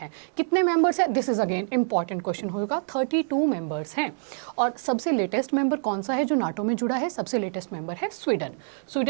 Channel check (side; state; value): left; silent; digital silence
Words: कितने मेंबर्स हैं? This is again important question होगा। 32 मेंबर्स हैं और सबसे लेटेस्ट मेंबर कौन सा है जो नाटो में जुड़ा है? सबसे लेटेस्ट मेंबर है स्वीडन।